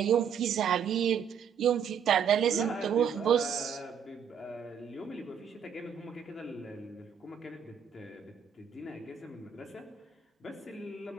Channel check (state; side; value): quieter; left; 7.6 dB